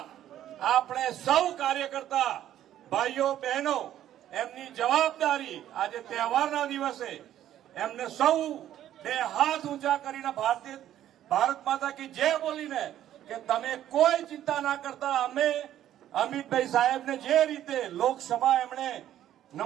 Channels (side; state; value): left; quieter; 11.9 dB